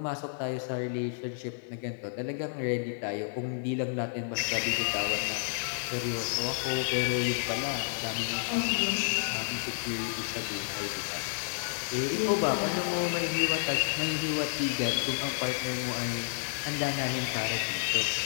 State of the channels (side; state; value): right; silent; 57 dB below the other